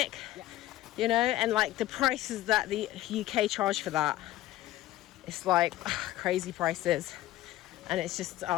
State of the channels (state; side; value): quieter; right; 15.0 dB